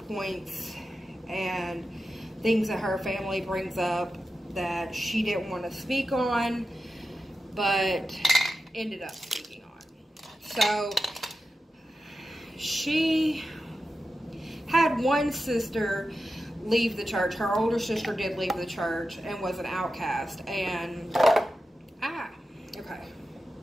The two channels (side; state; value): both; normal; correlation 0.91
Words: and things that her family brings up that she didn't want to speak on, but ended up speaking on. So she had one sister leave the church. Her older sister did leave the church and was an outcast. And, okay.